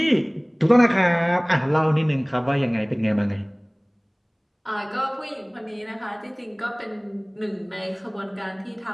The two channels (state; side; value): identical; both; correlation 1.00